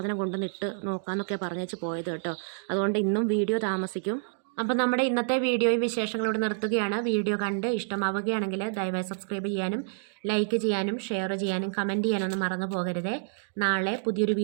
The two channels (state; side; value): silent; left; digital silence